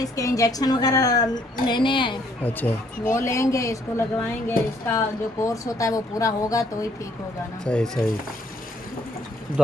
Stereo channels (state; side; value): normal; both; correlation 0.66